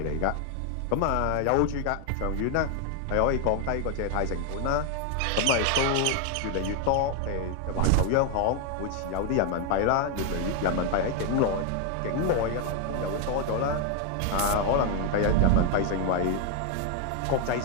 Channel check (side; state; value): both; different; correlation 0.01